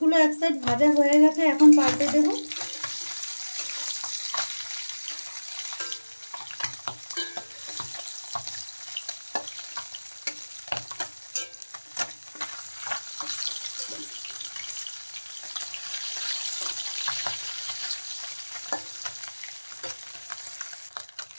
এক সাইড ভাজা হয়ে গেছে, এখন পাল্টে দেব।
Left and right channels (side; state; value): both; inverted; correlation -1.00